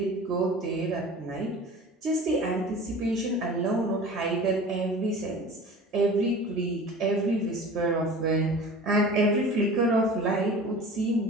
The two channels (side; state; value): both; normal; correlation 0.40